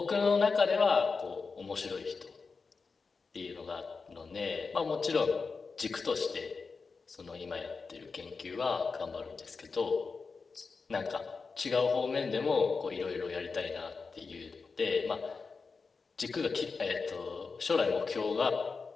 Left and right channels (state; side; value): quieter; right; 4.7 dB